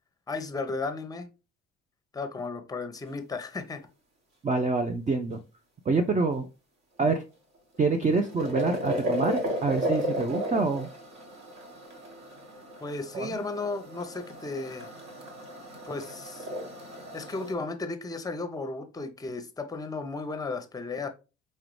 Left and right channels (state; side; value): normal; both; correlation 0.45